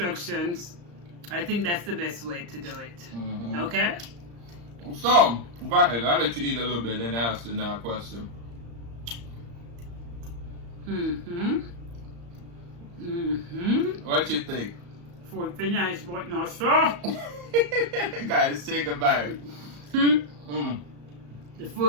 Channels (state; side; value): late; left; 34 ms